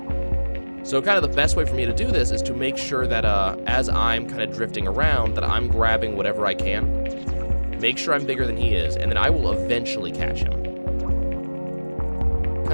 So kind of the best way for me to do this is to make sure that as I'm kind of drifting around, that I'm grabbing whatever I can, make sure I'm bigger than he is, and then I will eventually catch him.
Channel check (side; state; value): both; inverted; correlation -1.00